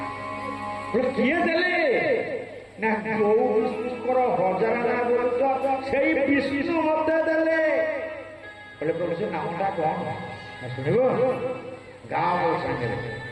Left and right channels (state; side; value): identical; both; correlation 1.00